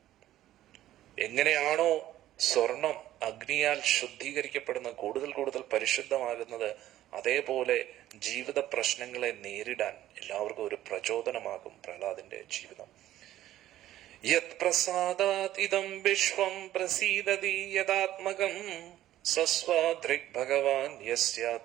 എങ്ങനെയാണോ സ്വർണം അഗ്നിയാൽ ശുദ്ധീകരിക്കപ്പെടുന്ന കൂടുതൽ കൂടുതൽ പരിശുദ്ധമാകുന്നത്, അതേപോലെ ജീവിത പ്രശ്നങ്ങളെ നേരിടാൻ എല്ലാവർക്കും ഒരു പ്രചോദനമാകും പ്രഹ്ലാദിന്റെ ജീവിതം. യത് പ്രസാദാത് ഇദം വിശ്വം പ്രസീദതി യദാത്മകം സസ്വാദൃക് ഭഗവാൻ യസ്യ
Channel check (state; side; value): quieter; left; 13.6 dB